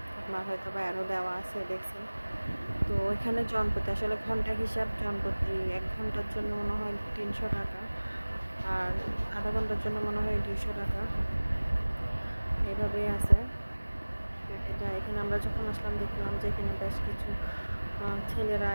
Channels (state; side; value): inverted; both; correlation -1.00